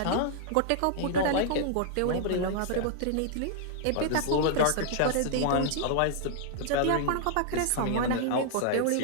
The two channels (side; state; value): both; different; correlation -0.01